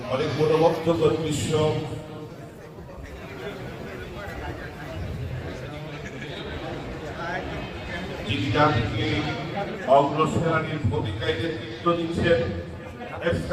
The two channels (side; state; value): both; identical; correlation 1.00